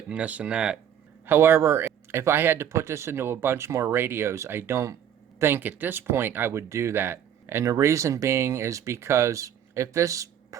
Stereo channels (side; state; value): left; quieter; 9.5 dB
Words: and this and that. However, if I had to put this into a bunch more radios, I don't think at this point I would do that. And the reason being is because if this